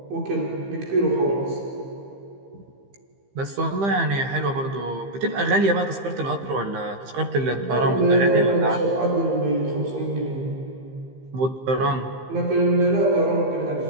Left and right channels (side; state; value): left; late; 15 ms